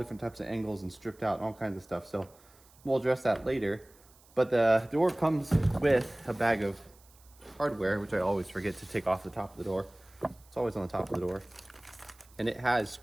types of angles and stripped out and all kinds of stuff. So we'll address that later. But the door comes with a bag of hardware, which I always forget to take off the top of the door. It's always on the top of the door. And it has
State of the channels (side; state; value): right; noise; hiss, 28 dB below the sound